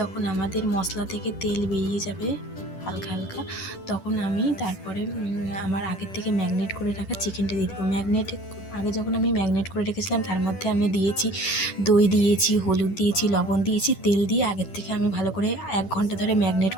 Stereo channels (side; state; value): right; late; 10 ms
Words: আমাদের মশলা থেকে তেল বেরিয়ে যাবে হালকা হালকা, তখন আমি তারপরে আমার আগের থেকে ম্যাগনেট করে রাখা চিকেনটা দিয়ে দেবো। আগে যখন আমি ম্যাগনেট করে রেখেছিলাম তার মধ্যে আমি দিয়েছি দই, দিয়েছি হলুদ, দিয়েছি লবণ, দিয়েছি তেল দিয়ে আগের থেকে আমি ভালো করে 1 ঘন্টা ধরে ম্যাগনেট